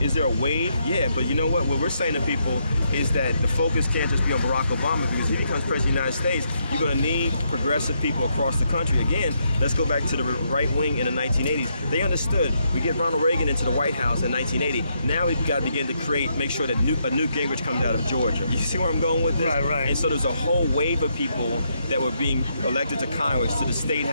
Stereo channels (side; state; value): both; inverted; correlation -0.77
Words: is there a wave? Yeah, but you know what? What we're saying to people is that the focus can't just be on Barack Obama, because if he becomes president of the United States, you're going to need progressive people across the country. Again, let's go back to the right wing in the 1980s. They understood. We get Ronald Reagan into the White House in 1980. Now we've got to begin to make sure that a Newt Gingrich comes out of Georgia. You see where I'm going with this? Right. And so there's a whole wave of people that were being elected to Congress, to the state